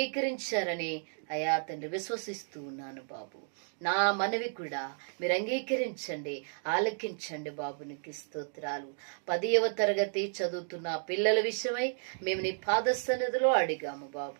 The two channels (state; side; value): silent; left; digital silence